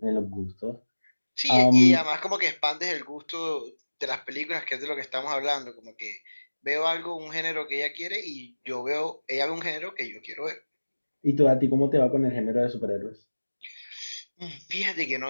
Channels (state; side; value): inverted; both; correlation -1.00